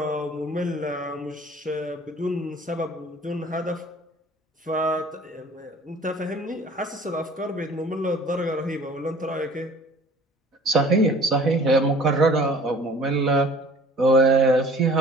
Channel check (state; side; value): normal; both; correlation 0.49